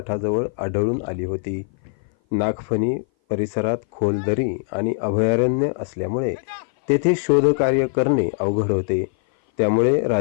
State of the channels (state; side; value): silent; right; 58 dB below the other